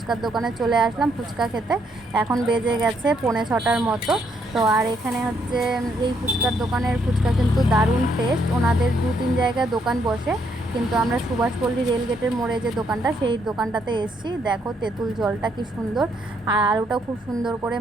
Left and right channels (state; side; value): normal; both; correlation 0.73